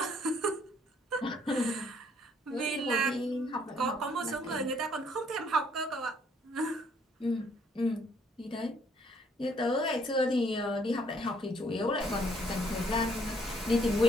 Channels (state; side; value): normal; both; correlation 0.65